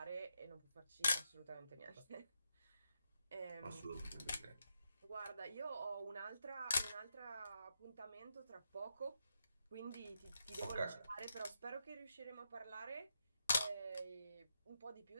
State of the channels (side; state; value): both; inverted; correlation -0.83